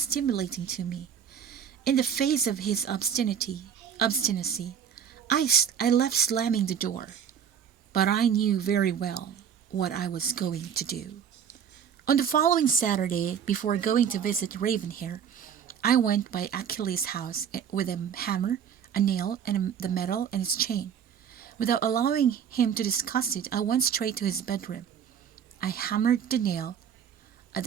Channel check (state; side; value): quieter; left; 8.1 dB